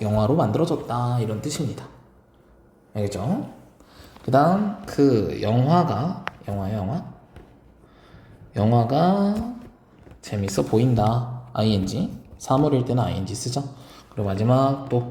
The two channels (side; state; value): both; identical; correlation 1.00